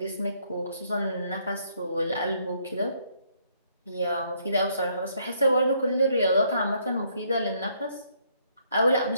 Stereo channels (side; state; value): both; inverted; correlation -0.69